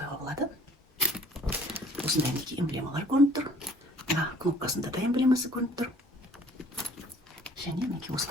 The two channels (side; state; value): both; normal; correlation 0.55